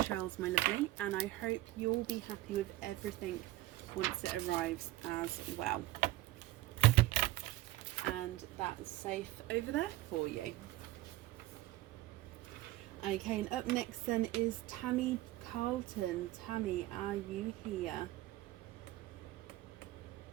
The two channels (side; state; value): left; quieter; 17.1 dB